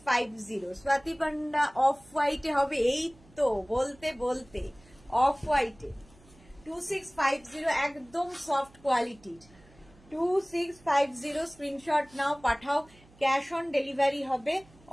স্বাতি পান্ডা অফ হোয়াইটে হবে, এই তো বলতে বলতে অফ হোয়াইটে 2650, একদম সফট কোয়ালিটির 2650। স্ক্রিনশট নাও, পাঠাও, ক্যাশ অন ডেলিভারি হবে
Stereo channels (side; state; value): right; noise; hum, 27 dB below the sound